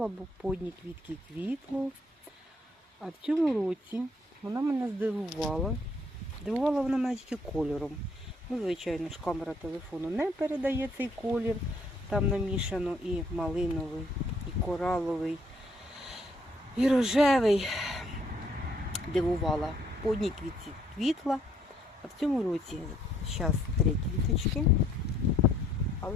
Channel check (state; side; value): normal; both; correlation 0.66